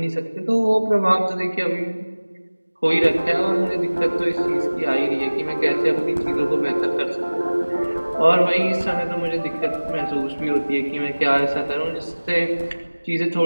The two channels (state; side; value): inverted; both; correlation -1.00